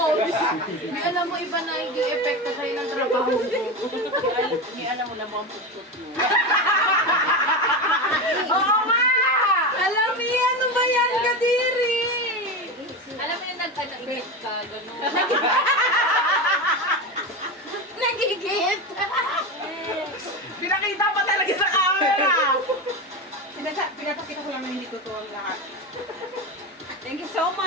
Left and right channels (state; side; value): normal; both; correlation 0.20